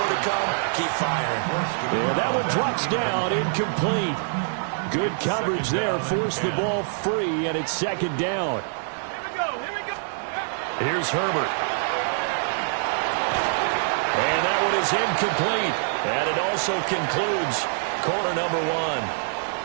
to come. Keep firing. And that one drops down, incomplete. Good coverage there, forced the ball free, and it's second down. Here's Herbert. And that one is incomplete. And it also concludes quarter number one.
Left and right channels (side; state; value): left; silent; digital silence